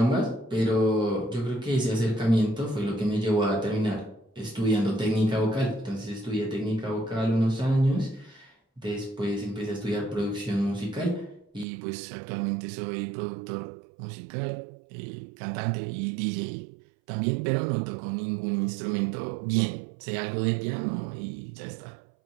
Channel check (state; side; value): drops out; left; at 11.7 s